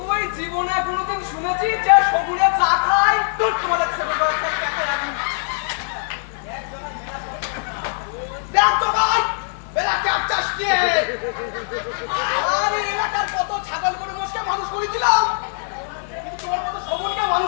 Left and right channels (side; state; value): right; silent; 65 dB below the other